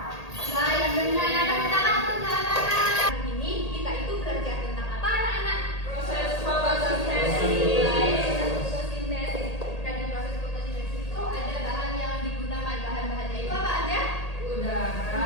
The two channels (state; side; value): late; right; 1.8 ms